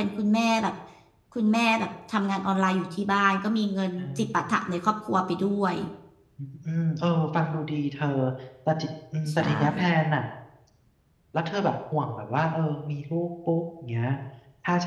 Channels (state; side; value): identical; both; correlation 1.00